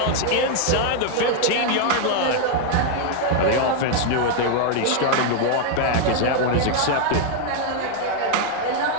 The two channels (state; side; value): different; both; correlation 0.00